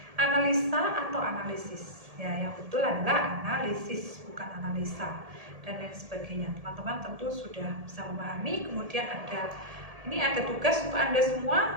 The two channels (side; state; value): left; late; 1.7 ms